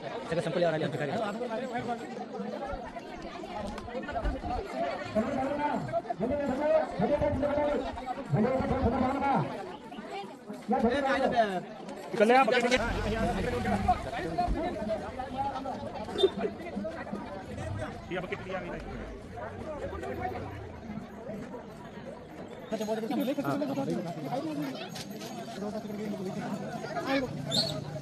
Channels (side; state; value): both; identical; correlation 1.00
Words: संपल्यावर आले आमचे कार्यकर्ते.